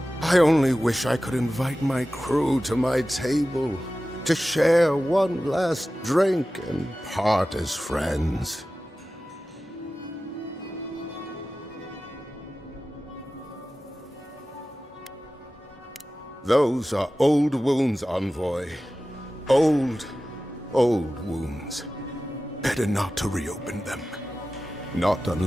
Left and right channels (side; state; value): both; normal; correlation 0.95